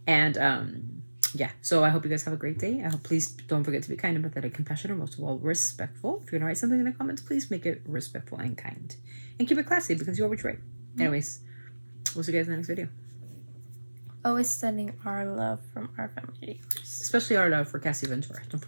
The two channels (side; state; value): both; inverted; correlation -1.00